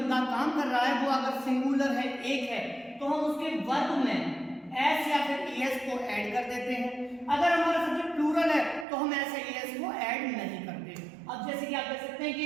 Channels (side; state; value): left; drops out; at 8.8 s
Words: काम कर रहा है वो अगर सिंगुलर है, एक है, तो हम उसके वर्ब में एस या फिर ईएस को ऐड कर देते हैं। अगर हमारा सब्जेक्ट प्लूरल है तो हम ऐसे ईएस को ऐड नहीं करते। अब जैसे कि आप देख सकते हैं